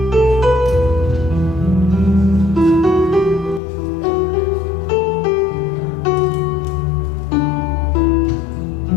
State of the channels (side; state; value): right; drops out; at 3.6 s